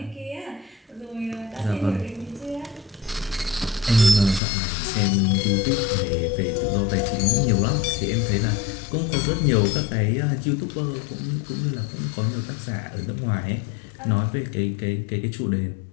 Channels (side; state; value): right; drops out; at 4.4 s